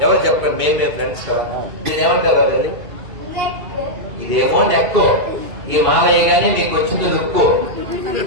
ఎవరు చెప్పండి మేమే ఫ్రెండ్స్ నేనేమంటారు వెళ్ళి ఇదేమో నెక్కు ఈ మాలయ్యగానే నీకు వచ్చింది లుక్కు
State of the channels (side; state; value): left; late; 2.7 ms